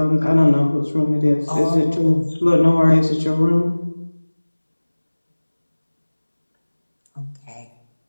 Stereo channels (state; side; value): inverted; both; correlation -1.00